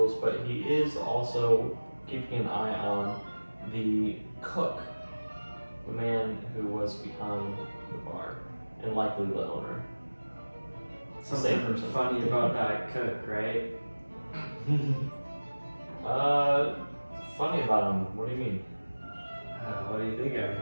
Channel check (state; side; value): inverted; both; correlation -1.00